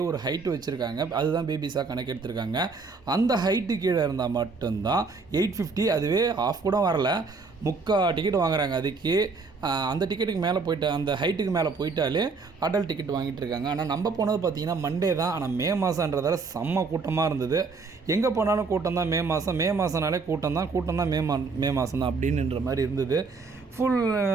ஒரு ஹைட்டு வச்சுருக்காங்க, அதுதான் பேபிஸாக கணக்கு எடுத்திருக்காங்க. அந்த ஹைட்டு கீழே இருந்தால் மட்டும்தான் 850, அதுவே ஆஃப் கூட வரல, டிக்கெட் வாங்குறாங்க. அதுக்கு அந்த டிக்கெட்டுக்கு மேலே போய்ட்டு அந்த ஹைட்டுக்கு மேலே போயிட்டாலே அடல்ட் டிக்கெட் வாங்கிட்டு இருக்காங்க. ஆனால் நம்ம போனது பார்த்திங்கன்னா மண்டே தான். ஆனால் மே மாதன்றதால செம்ம கூட்டமாக இருந்தது. எங்கே போனாலும் கூட்டம் தான். மே மாதம்னாலே கூட்டம் தான். மே மாதம் தான் அப்படின்ற மாதிரி இருந்தது. ஃபுல்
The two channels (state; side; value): quieter; left; 4.5 dB